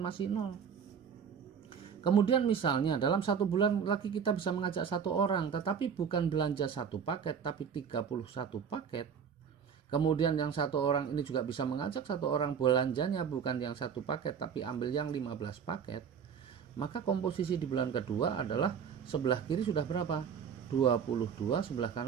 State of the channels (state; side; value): quieter; left; 7.1 dB